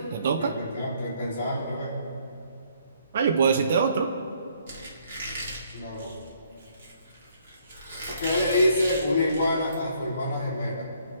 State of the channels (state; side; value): inverted; both; correlation -0.67